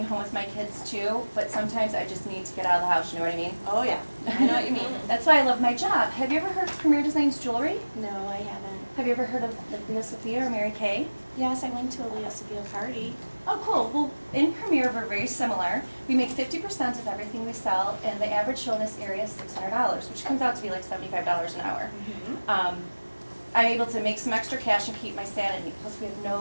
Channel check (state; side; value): inverted; both; correlation -1.00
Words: home with my kids too, but sometimes I just need to get out of the house, you know what I mean? Oh yeah, I know what you mean. That's why I love my job. Have you ever heard of Premier Designs Jewelry? No, I haven't. Have you ever heard of like Leo Sophia or Mary Kay? Yes, I went to a Leo Sophia party. Oh, cool. Well, in Premier, we're very similar. We make 50% of everything we sell, and the average show in this area is $600, which comes out to be like $75 an hour. I'm able to make some extra cash and keep my sanity. Plus, we have